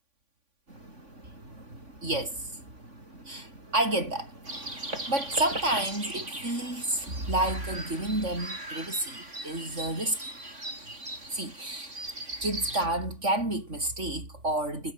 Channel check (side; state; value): left; late; 3.5 ms